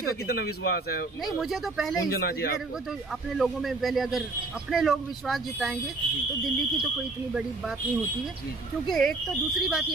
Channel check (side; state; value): left; quieter; 3.3 dB